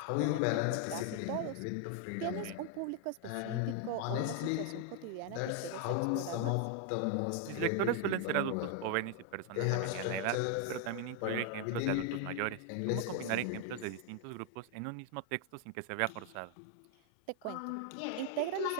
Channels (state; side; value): different; both; correlation 0.00